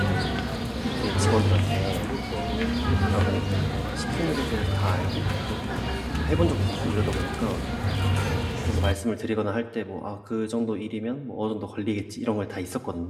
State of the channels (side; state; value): both; identical; correlation 1.00